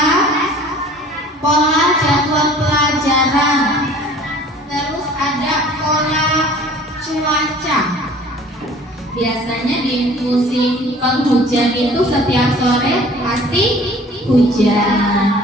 pola jadwal pelajaran, terus ada pola cuaca. Biasanya di musim penghujan itu setiap sore pasti hujan.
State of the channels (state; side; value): normal; both; correlation 0.49